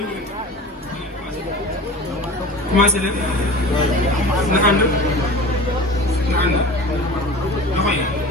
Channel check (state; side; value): normal; both; correlation 0.37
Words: commencé leen na ànd loxo yi